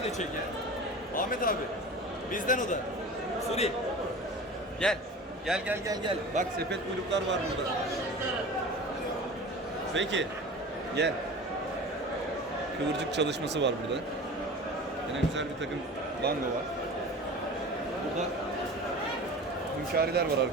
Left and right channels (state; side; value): normal; both; correlation 0.36